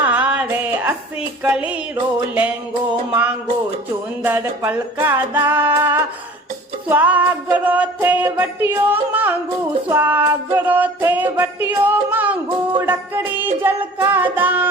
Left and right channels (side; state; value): both; normal; correlation 0.45